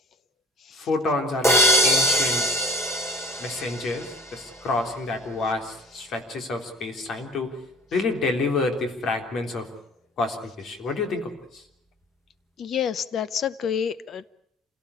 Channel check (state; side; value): normal; both; correlation 0.45